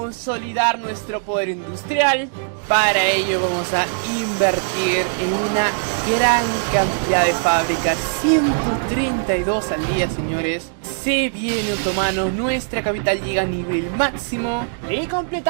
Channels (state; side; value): silent; left; digital silence